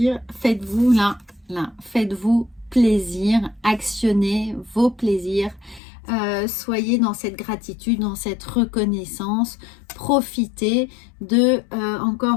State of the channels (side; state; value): right; drops out; at 5.8 s